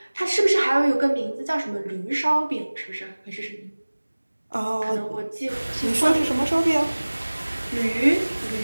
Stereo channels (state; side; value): inverted; both; correlation -1.00